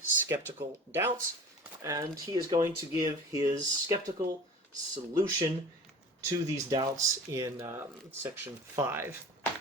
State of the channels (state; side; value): normal; both; correlation 0.40